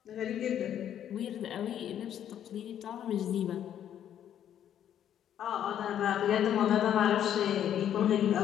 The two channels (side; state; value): right; quieter; 10.2 dB